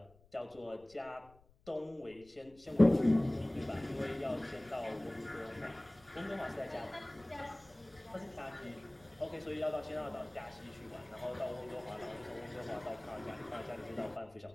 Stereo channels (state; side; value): noise; left; rumble, 27 dB below the sound